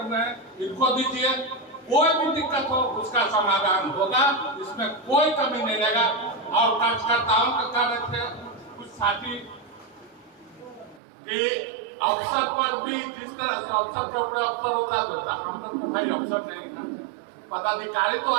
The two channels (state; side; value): drops out; left; at 11.0 s